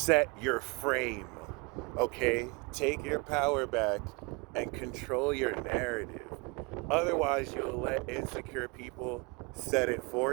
your frame, okay? Take your power back and control your narrative. Otherwise, you'll let insecure people set it for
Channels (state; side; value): quieter; left; 28.8 dB